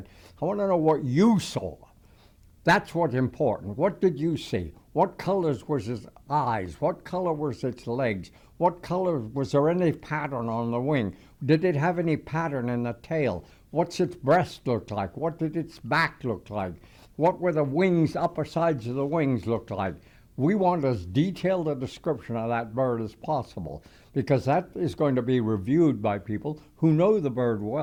I want to know what you saw. That's what's important. What did you see? What colors was its eyes? What color was its legs? What color, was there any pattern on the wing? Did it have any pattern in the tail? What's its breast look like? What did its back look like? What were the wings, upper sides of the wings look like? We want as detailed a description of that bird as possible, because that is going to be reviewed by people who know the bird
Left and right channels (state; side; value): identical; both; correlation 1.00